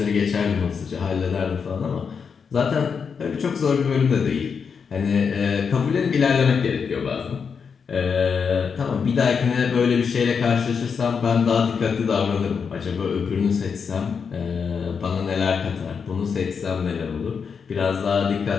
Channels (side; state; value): right; quieter; 6.1 dB